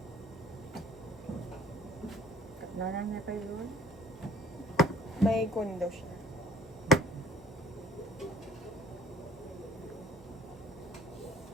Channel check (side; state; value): both; normal; correlation 0.54